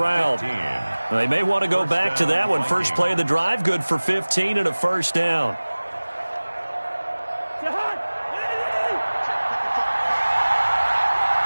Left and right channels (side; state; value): both; inverted; correlation -1.00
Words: They may want to go back to that one. First play of the drive, good for 15 and a 1st down.